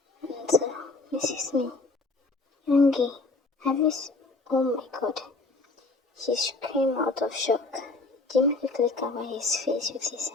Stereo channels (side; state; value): right; quieter; 3.3 dB